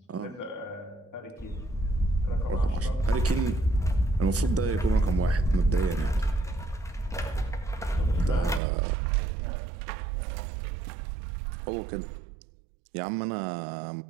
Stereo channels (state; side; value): drops out; left; at 8.6 s